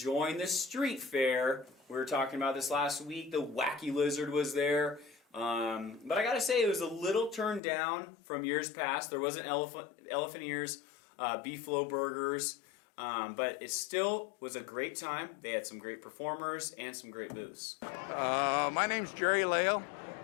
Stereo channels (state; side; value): drops out; right; at 7.6 s